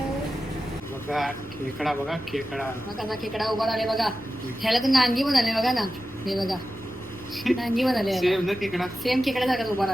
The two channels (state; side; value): normal; both; correlation 0.93